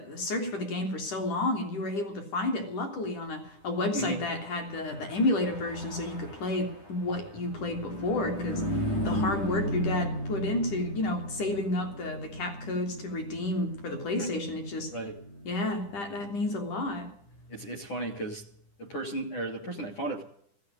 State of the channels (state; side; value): late; right; 10 ms